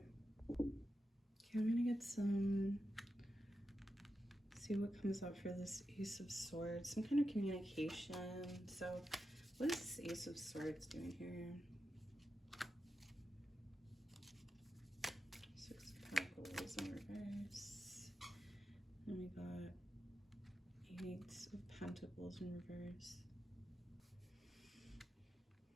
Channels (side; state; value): both; normal; correlation 0.89